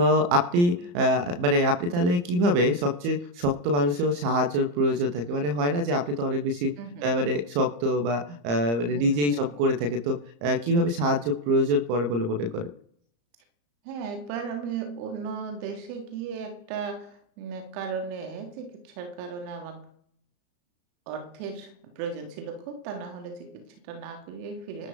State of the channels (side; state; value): left; late; 34 ms